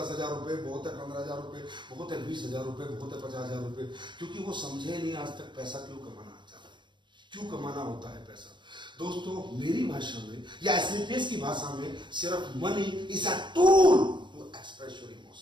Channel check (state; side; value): late; left; 0.22 ms